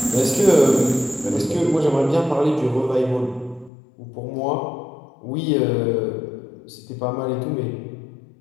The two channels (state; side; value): drops out; right; at 3.7 s